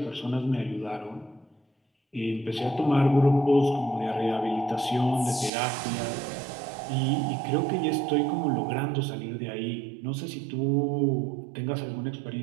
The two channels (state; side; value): drops out; left; at 5.5 s